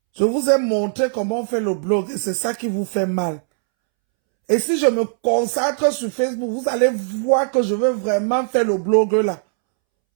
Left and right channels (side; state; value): left; silent; 66 dB below the other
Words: Je vous ai montré comment on fait le blog et c'est ça qui vous fait mal. Et si je me consacre sur Facebook, vous allez voir que je veux vraiment faire le blog là.